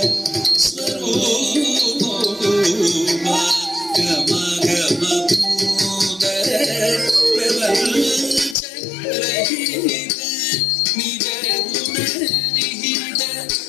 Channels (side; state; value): right; drops out; at 8.6 s